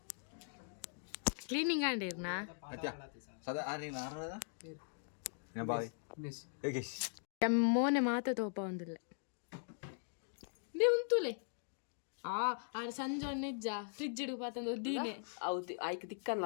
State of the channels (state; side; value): silent; right; digital silence